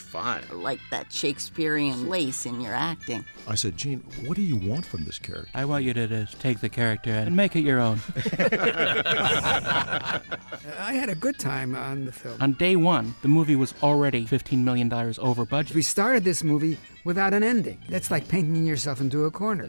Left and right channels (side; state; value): both; inverted; correlation -1.00